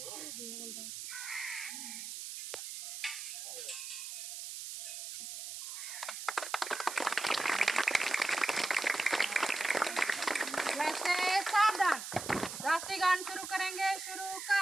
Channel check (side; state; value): right; noise; hiss, 8 dB below the sound